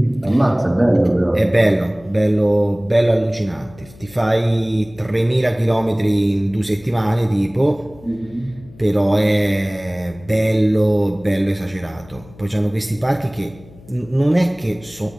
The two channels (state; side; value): noise; left; hum, 22 dB below the sound